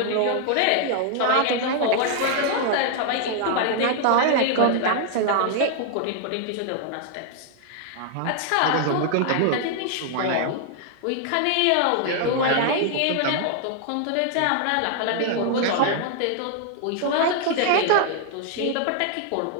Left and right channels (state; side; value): different; both; correlation 0.00